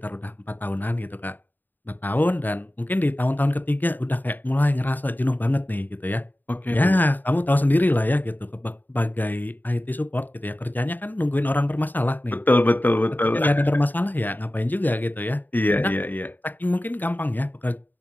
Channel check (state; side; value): late; right; 0.088 ms